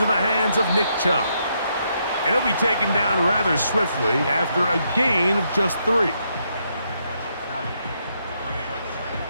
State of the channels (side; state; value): both; inverted; correlation -0.77